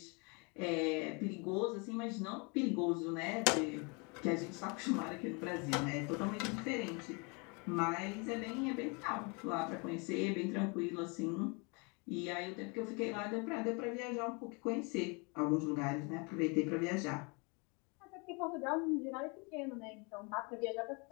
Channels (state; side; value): quieter; right; 31.6 dB